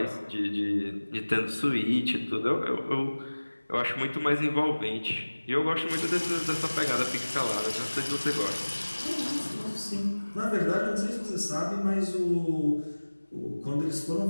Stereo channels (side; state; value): both; inverted; correlation -1.00